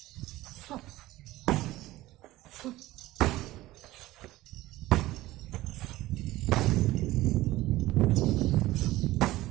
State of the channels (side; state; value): left; quieter; 17.2 dB